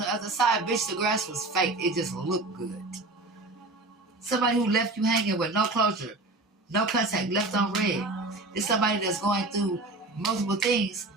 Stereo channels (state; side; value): quieter; left; 3.1 dB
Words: other side. Bitch, the grass was fake. It just looked good. Somebody who left you hanging with no closure, no contact, left on red. It's somebody that's going through multiple things